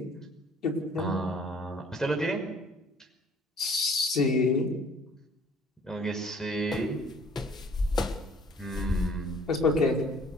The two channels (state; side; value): normal; both; correlation 0.55